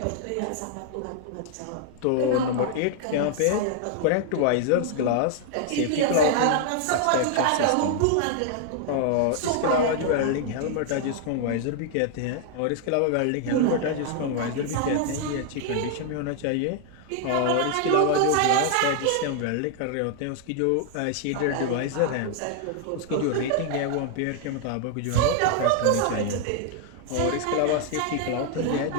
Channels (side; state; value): both; different; correlation 0.00